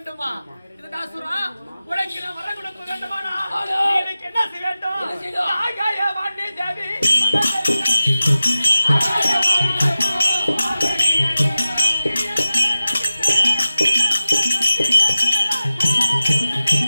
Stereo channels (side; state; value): both; inverted; correlation -0.95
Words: இதுதாசுரா உனக்கு நான் வர கொடுக்க வேண்டுமா? எனக்கு என்ன செய்ய வேண்டும்? ஆகாய வாணி தேவி